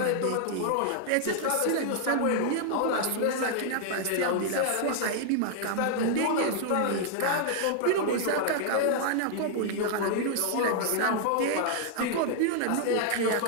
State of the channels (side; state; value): both; different; correlation -0.01